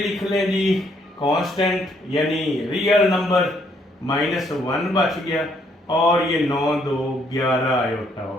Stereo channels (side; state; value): both; normal; correlation 0.69